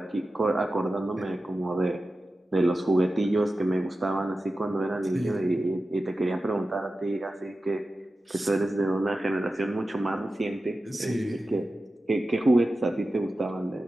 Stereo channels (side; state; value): both; normal; correlation 0.93